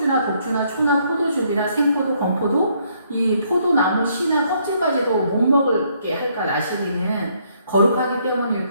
독주나 초나 포도즙이나 생포도, 건포도 이 포도나무 씨나 껍질까지도 못 먹게 할까? 나시리는 거룩하기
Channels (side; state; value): both; inverted; correlation -0.70